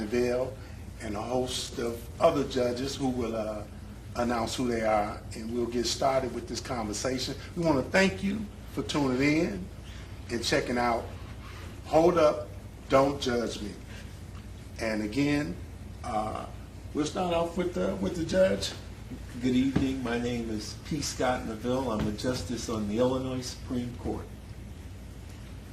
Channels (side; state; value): both; identical; correlation 1.00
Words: and a host of other judges who will announce who they are, and we'll get started with this conversation. We want to thank you for tuning in and checking out Hold Up, Don't Judge Me. And again, we'll start off with the judge. Good evening. My name is P. Scott Neville. I'm a justice on the Illinois Supreme Court.